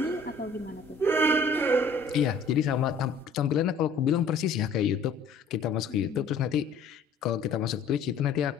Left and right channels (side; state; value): right; quieter; 4.0 dB